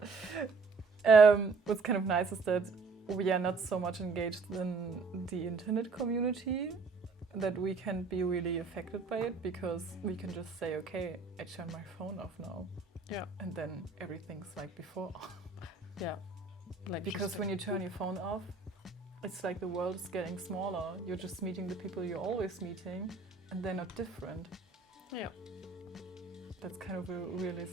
What's kind of nice is that we are not so much engaged in the internet community, that we can be really affected by it, because we can just say, okay, I turn my phone off now, yeah, and then everything's like before. yeah. Like Because just when you turn your phone off, it's like the world is getting smaller. You're just meeting the people you're always meeting, and they're not different. yeah, That's kind of a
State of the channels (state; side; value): quieter; left; 4.3 dB